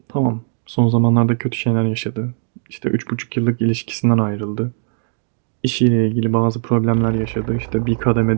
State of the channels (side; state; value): left; silent; digital silence